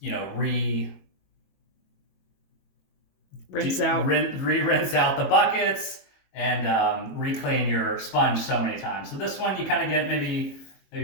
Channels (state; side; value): late; right; 22 ms